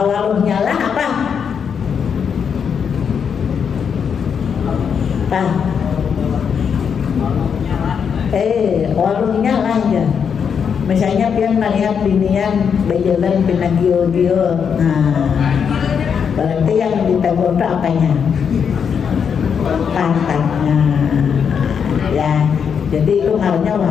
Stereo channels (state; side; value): quieter; right; 7.0 dB